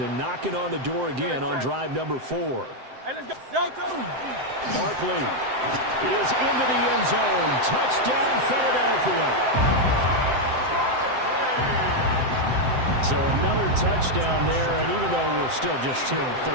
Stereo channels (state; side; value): late; left; 7.8 ms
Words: and knocking on the door again on drive number 4. Barkley is into the end zone. Touchdown, Philadelphia. So another touchdown there, and even though we're still just here in the